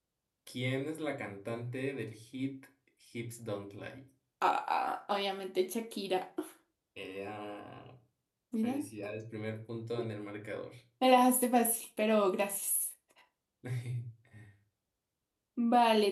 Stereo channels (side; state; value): both; identical; correlation 1.00